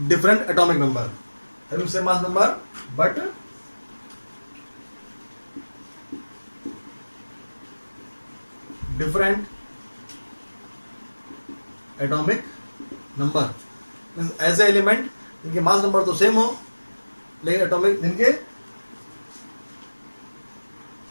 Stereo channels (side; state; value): both; inverted; correlation -1.00